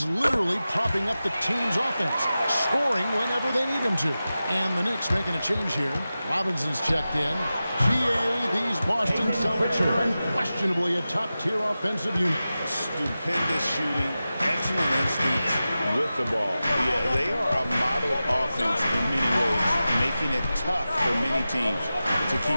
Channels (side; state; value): both; inverted; correlation -0.94